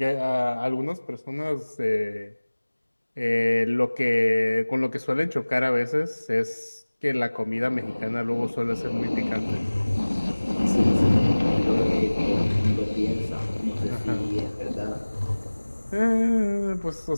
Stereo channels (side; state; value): both; inverted; correlation -1.00